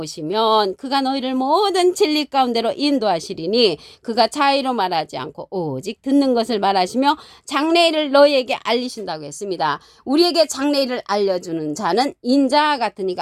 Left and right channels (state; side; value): identical; both; correlation 1.00